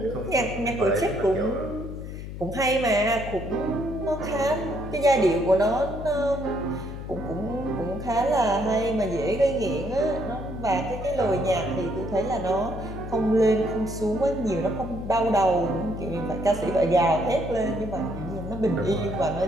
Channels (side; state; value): left; noise; hum, 9 dB below the sound